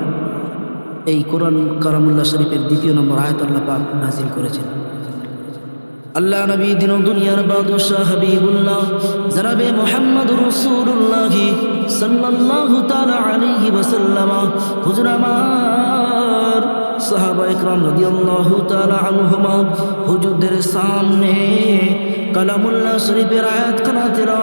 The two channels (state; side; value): inverted; both; correlation -1.00